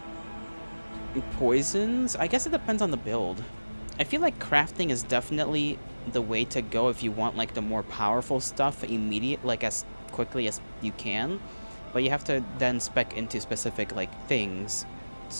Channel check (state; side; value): inverted; both; correlation -1.00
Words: poisons. I guess it depends on the build. I feel like crafting is definitely the way to go if you want like the more powerful stuff immediate, like as quickly as you can, but you have to then spec into specific like things.